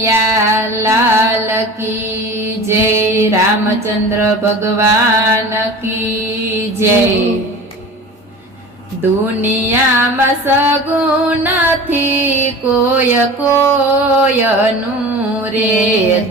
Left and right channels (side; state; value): both; normal; correlation 0.36